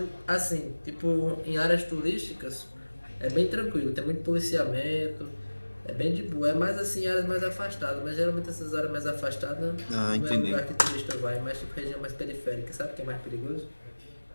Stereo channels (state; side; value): inverted; both; correlation -1.00